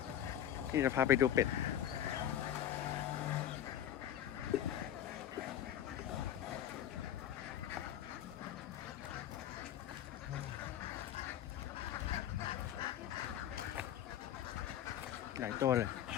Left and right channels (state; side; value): quieter; right; 10.9 dB